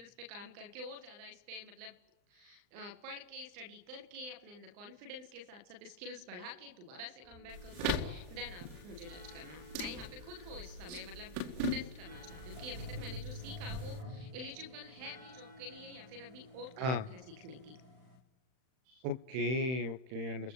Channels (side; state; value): left; late; 39 ms